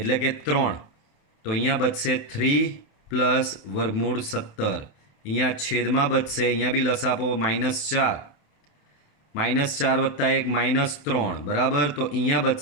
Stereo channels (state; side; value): late; right; 28 ms